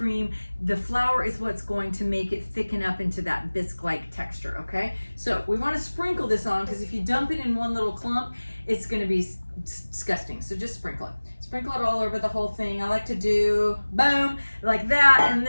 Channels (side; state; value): both; inverted; correlation -1.00